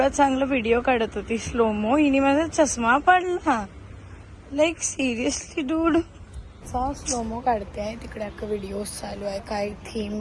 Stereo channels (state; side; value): identical; both; correlation 1.00